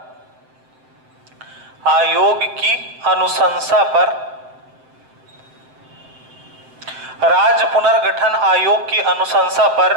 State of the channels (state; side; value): late; left; 7.8 ms